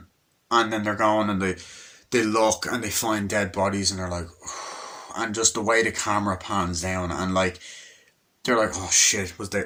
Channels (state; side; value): identical; both; correlation 1.00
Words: then they're going, and they look, and they find dead bodies, and they're like, and just the way the camera pans down, and like, they're like, oh shit, were